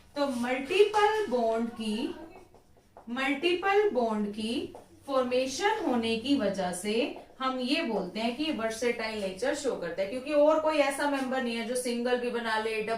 तो मल्टीपल बॉन्ड की फॉर्मेशन होने की वजह से हम ये बोलते हैं कि वर्सेटाइल नेचर शो करता है, क्योंकि और कोई ऐसा मेंबर नहीं है जो सिंगल भी बना ले,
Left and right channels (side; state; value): both; identical; correlation 1.00